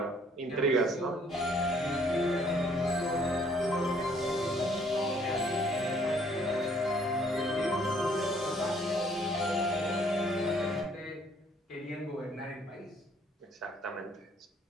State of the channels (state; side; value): normal; both; correlation 0.62